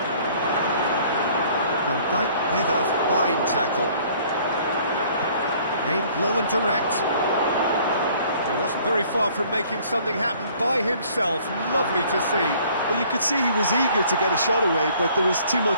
Van Dijk with a fine tackle. Aimed low and direct. He wasn't very far from making something happen by himself. Lovely to see. Well, you could see he was eager to get a shot away, but there was too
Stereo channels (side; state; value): both; inverted; correlation -0.56